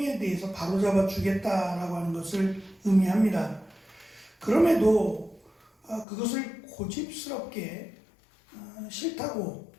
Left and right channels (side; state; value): right; drops out; at 6.1 s